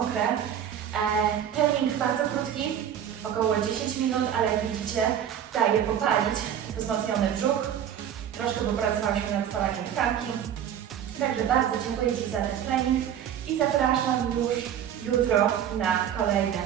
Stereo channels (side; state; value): left; quieter; 9.5 dB